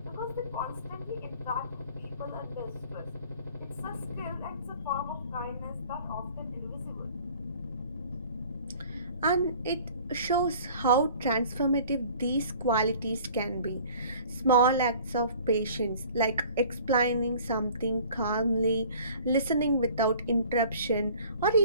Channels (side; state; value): both; inverted; correlation -0.49